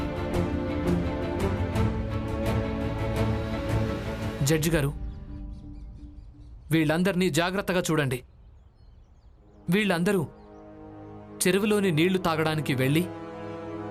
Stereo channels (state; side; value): identical; both; correlation 1.00